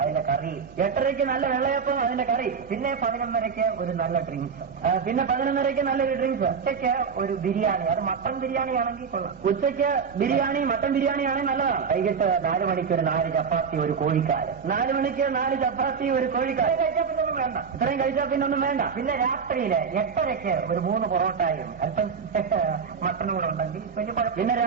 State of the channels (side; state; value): left; quieter; 6.1 dB